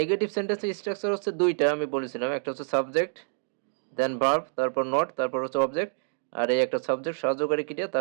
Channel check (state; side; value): silent; left; digital silence